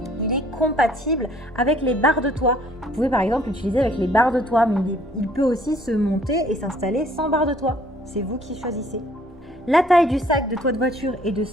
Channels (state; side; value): normal; both; correlation 0.59